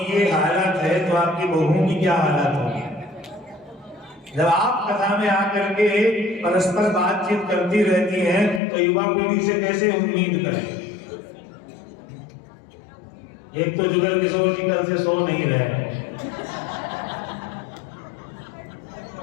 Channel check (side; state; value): right; drops out; at 8.6 s